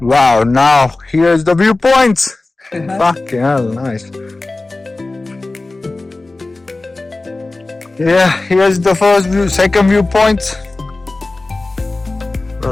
Wow, now here's the viewpoints. Fucking hell, nice. Yeah, here's the first view, second viewpoint.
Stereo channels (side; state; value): right; quieter; 3.2 dB